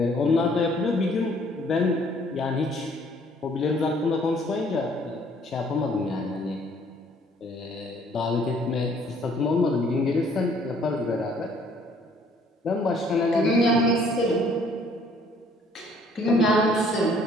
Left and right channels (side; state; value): both; normal; correlation 0.60